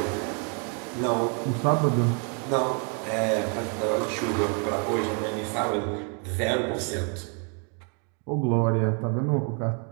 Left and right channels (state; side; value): quieter; left; 38.8 dB